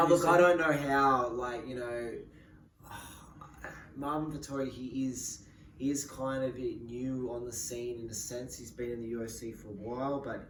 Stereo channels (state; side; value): identical; both; correlation 1.00